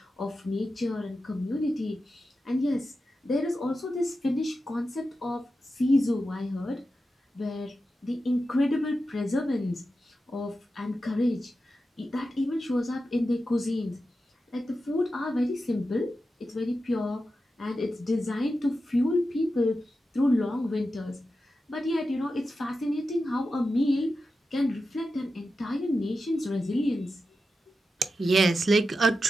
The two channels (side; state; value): both; normal; correlation 0.91